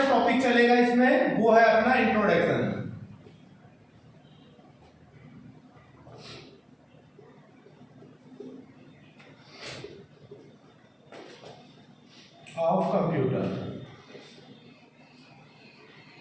टॉपिक चलेगा इसमें वो है अपना introduction of computer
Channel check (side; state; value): both; identical; correlation 1.00